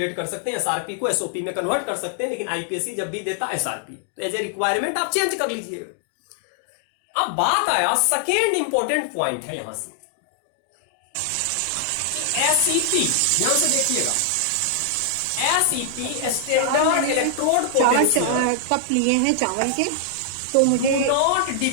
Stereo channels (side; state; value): both; different; correlation 0.00